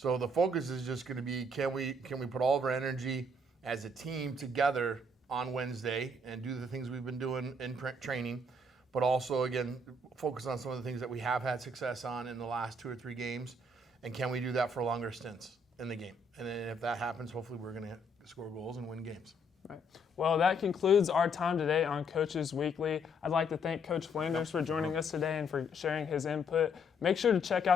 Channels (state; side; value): normal; both; correlation 0.69